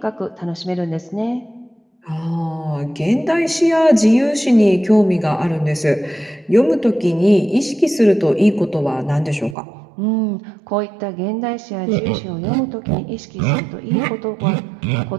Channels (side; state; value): left; drops out; at 9.6 s